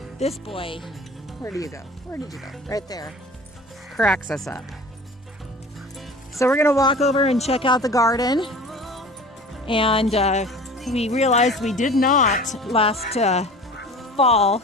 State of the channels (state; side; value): normal; both; correlation 0.41